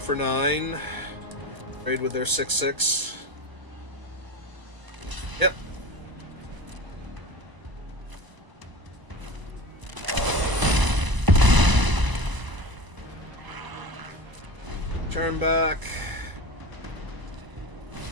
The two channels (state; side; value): late; left; 1.0 ms